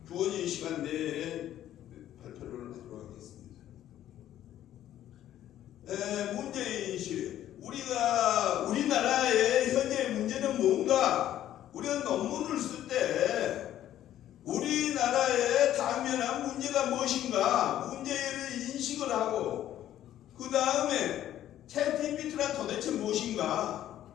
주어진 시간 내에 발표를 하도록 하겠습니다. 문제인식. 우리나라의 현재 문제는 뭔가? 우리가 논문을 쓸 때 우리나라의 당면한 문제가 무엇인가? 문제를 인식을 하고 그 다음에 챗GPT란 도대체 무엇인가?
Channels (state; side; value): quieter; right; 12.1 dB